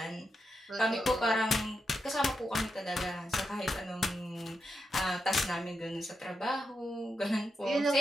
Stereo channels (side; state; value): both; normal; correlation 0.86